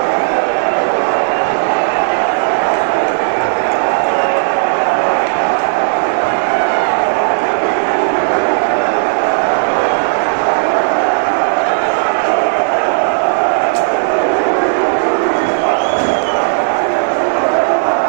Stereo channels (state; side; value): silent; left; digital silence